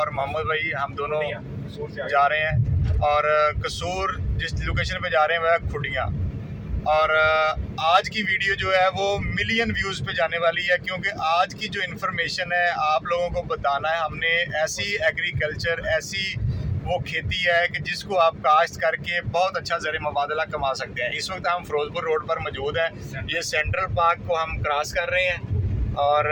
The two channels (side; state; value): both; identical; correlation 1.00